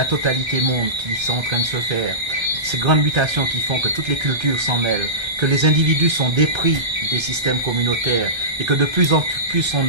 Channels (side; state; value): left; late; 1.3 ms